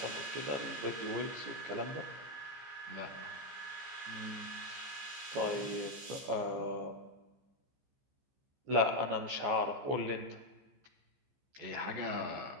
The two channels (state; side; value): late; left; 15 ms